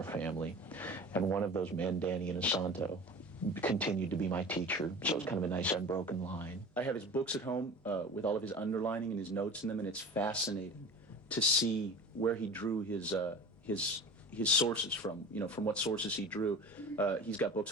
family. And one of those men, Danny Inosanto, continued to be my teacher, so it's kind of a nice unbroken line. I have his books at home with all of his underlining and his notes in them, and it's fascinating to see where he drew his sources from, from what sources he drew. He's got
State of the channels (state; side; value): normal; both; correlation 0.37